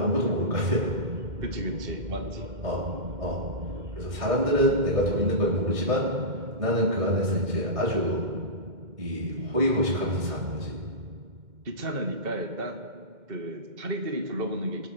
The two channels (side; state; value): left; late; 2.1 ms